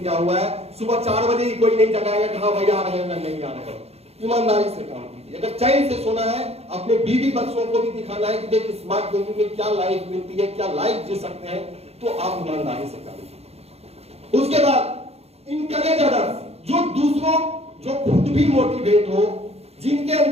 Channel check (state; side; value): late; left; 0.30 ms